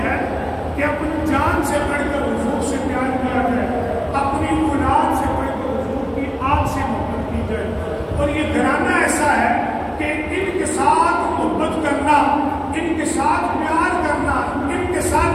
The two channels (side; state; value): both; identical; correlation 1.00